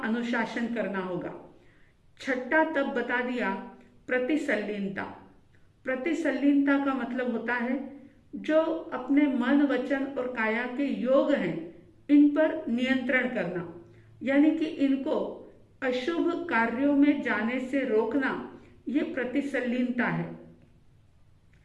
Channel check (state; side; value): identical; both; correlation 1.00